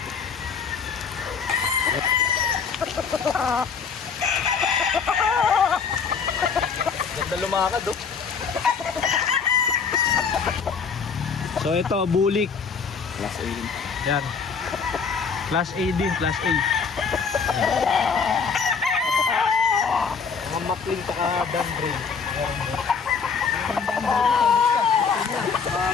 Ganda lumakad, oh. So ito, bulik. Class A rin. Yan. Class A din, class A. Yan. Mga makling ka Dan Brain.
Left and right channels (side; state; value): right; quieter; 5.8 dB